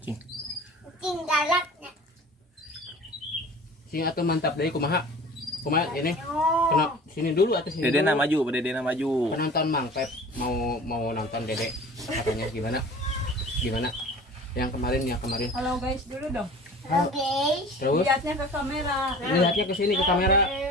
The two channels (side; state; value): both; normal; correlation 0.42